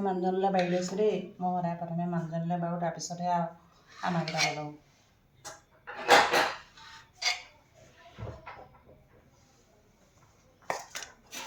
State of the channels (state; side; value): identical; both; correlation 1.00